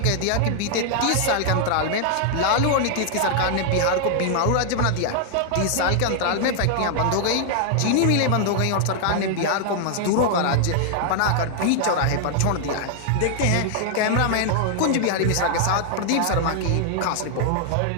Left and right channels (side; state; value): both; different; correlation 0.00